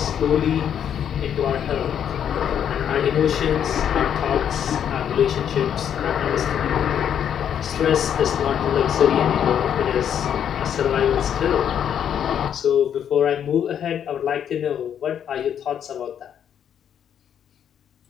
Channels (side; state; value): right; quieter; 9.0 dB